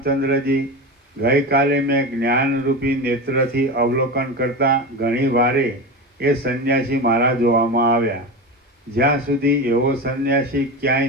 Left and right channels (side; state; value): both; normal; correlation 0.23